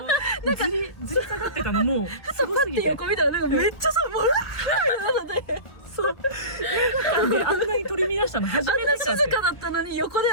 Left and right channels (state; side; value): late; right; 1.4 ms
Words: ずり下がってたのもうすごすぎて。横見たらなんかめっちゃさ、もうそう。映画館であんなに取り乱したの初めてかって。静かだったのに横で